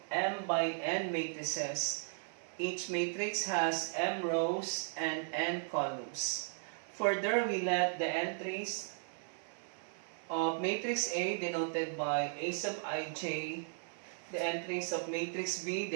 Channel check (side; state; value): left; silent; 53 dB below the other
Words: M by N matrices. Each matrix has M rows and N columns. Further, we let the entries of matrix A denoted by A sub ij, the entries of matrix B